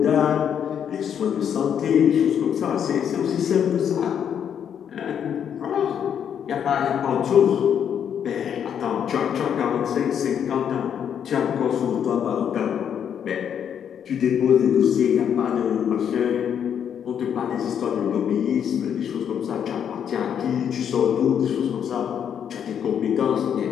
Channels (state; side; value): quieter; right; 8.5 dB